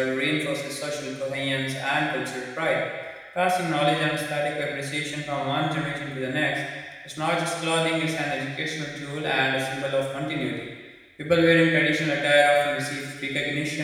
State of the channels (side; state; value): both; identical; correlation 1.00